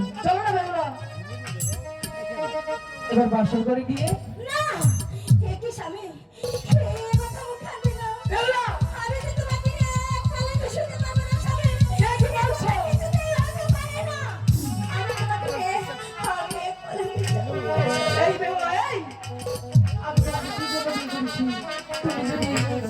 চলো না বেহুলা, এবার বাসর করে গিয়ে না, এ কি স্বামী, এ কথা মুখে আনবে না। বেহুলা, আমি তো তোমাকে এক পালকে শুতে পারবো না স্বামী। কে কি বলছে? কিছুতেই হতে পারে না। আমি তোমাকে এক পালকে শুতে পারবো না। এই বেহুলা, এই আমি তোমাকে কি জন্য বিয়ে করেছি?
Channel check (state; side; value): identical; both; correlation 1.00